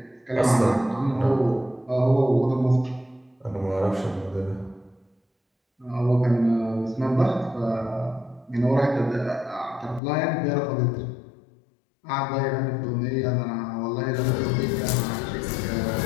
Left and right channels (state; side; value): drops out; right; at 10.0 s